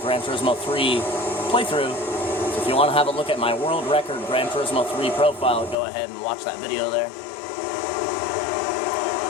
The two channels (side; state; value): right; drops out; at 5.8 s